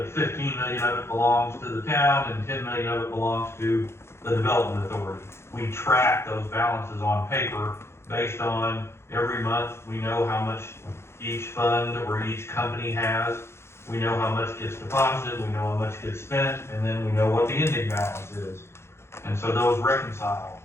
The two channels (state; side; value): late; right; 0.12 ms